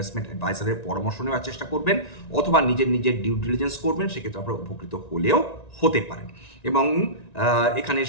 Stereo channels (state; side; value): late; right; 1.9 ms